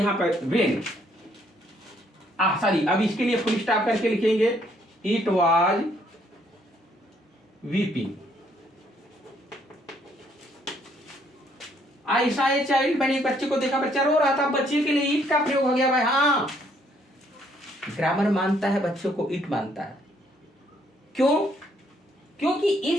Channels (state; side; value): normal; both; correlation 0.68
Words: पर वेन, सॉरी, अब इसके लिए फुल स्टॉप करके लिखेंगे इट वाज वीपिंग। आई सा ए चाइल्ड, मैंने एक बच्चे को देखा, बच्चा रो रहा था, बच्चे के लिए ईट का प्रयोग हो गया भाई। हाँ, ग्रामर मानता है बच्चों को, ईट मानता है। क्यों? क्योंकि